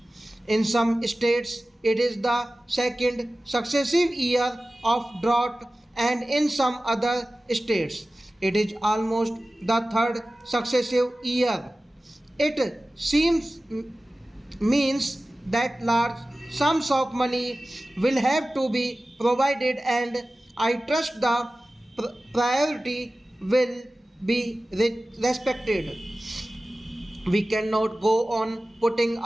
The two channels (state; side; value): normal; both; correlation 0.96